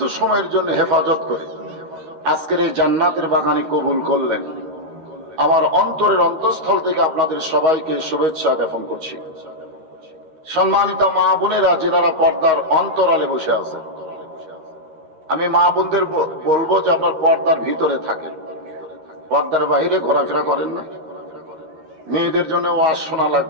সময়ের জন্য হেফাজত করে আজকের এই জান্নাতের বাগানে কবুল করলেন, আমার অন্তরের অন্তঃস্থল থেকে আপনাদের সবাইকে শুভেচ্ছা জ্ঞাপন করছি। সম্মানিত মা বোনেরা, যেনারা পর্দার অন্তরালে বসে আছে, আমি মা বোনদের বলবো যে আপনার পর্দার ভিতরে থাকেন, পর্দার বাইরে ঘোরাফেরা করেন না। মেয়েদের জন্য ওয়াজ শোনা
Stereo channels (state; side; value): late; left; 13 ms